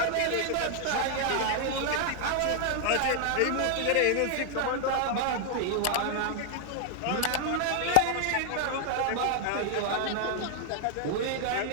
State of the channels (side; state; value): both; different; correlation 0.00